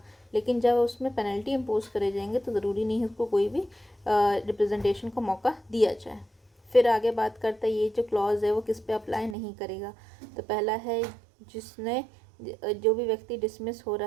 लेकिन जब उसमें पेनल्टी इम्पोज करे जाएंगे तो ज़रूरी नहीं है उसको कोई भी रिप्रेजेंटेशन का मौका दिया जाए। फिर आगे बात करता है ये जो क्लॉज है वो किस पे अप्लाई नहीं करेगा। तो पहला है जिसने जो भी व्यक्ति डिसमिस हो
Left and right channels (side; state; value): left; drops out; at 9.3 s